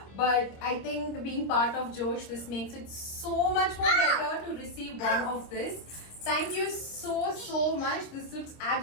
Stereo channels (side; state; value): right; late; 25 ms